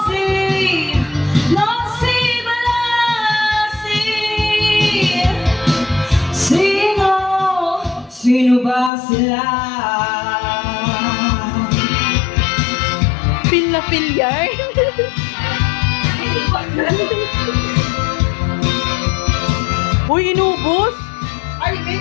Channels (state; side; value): drops out; right; at 8.9 s